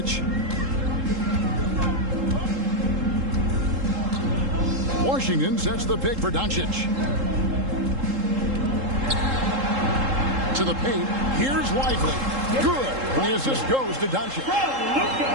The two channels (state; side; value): late; left; 3.7 ms